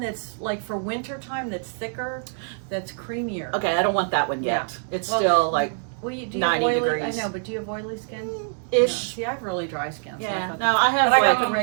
that's like for winter time. That's thicker. That's creamier. Okay, I don't want that one yet. It's Well, still like Well, do you have 90 oily? degrees. I know, but do you have oily skin? ish. No. See, I have really dry skin. So Yeah. I thought No, I have but I got like the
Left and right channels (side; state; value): left; silent; 62 dB below the other